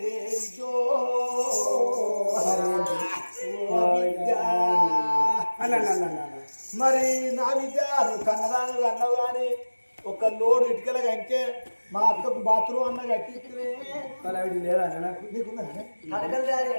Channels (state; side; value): inverted; both; correlation -1.00